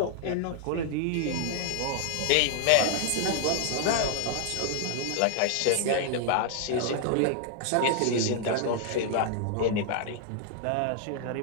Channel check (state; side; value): different; both; correlation 0.00